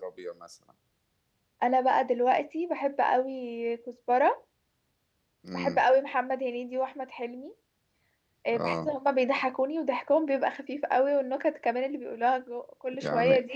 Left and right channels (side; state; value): both; identical; correlation 1.00